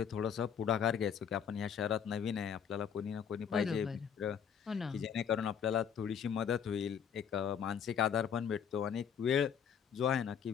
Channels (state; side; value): quieter; right; 7.8 dB